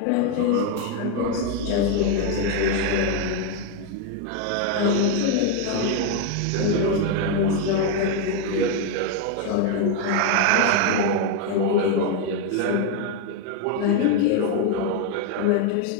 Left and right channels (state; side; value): different; both; correlation 0.01